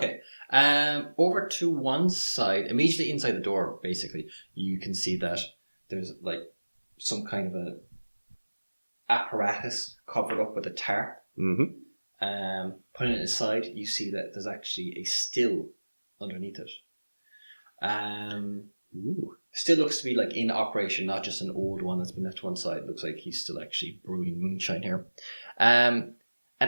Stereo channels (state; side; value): inverted; both; correlation -1.00